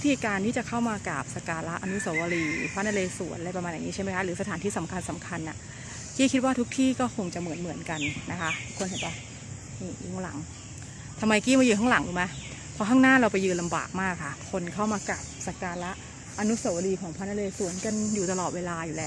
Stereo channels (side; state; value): both; identical; correlation 1.00